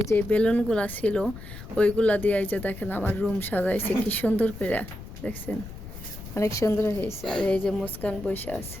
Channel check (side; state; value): left; noise; rumble, 13 dB below the sound